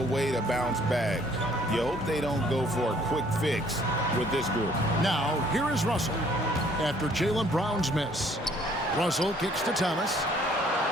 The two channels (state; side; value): normal; both; correlation 0.60